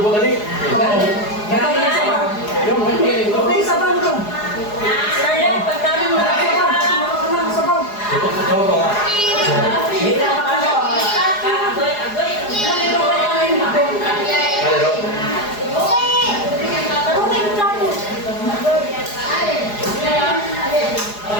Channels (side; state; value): right; late; 4.8 ms